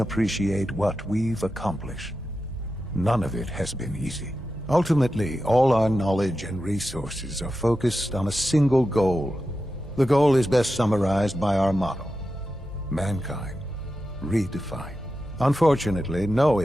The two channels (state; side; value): normal; both; correlation 0.91